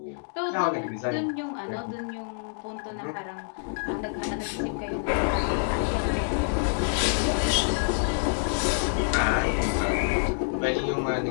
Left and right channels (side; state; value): right; silent; digital silence